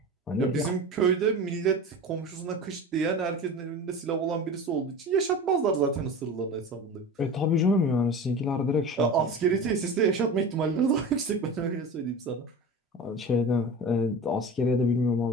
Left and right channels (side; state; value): both; normal; correlation 0.32